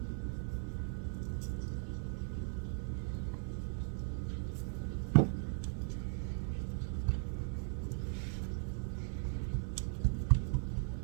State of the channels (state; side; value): silent; left; 52 dB below the other